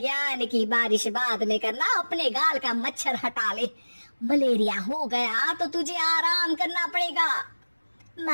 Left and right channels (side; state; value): both; inverted; correlation -1.00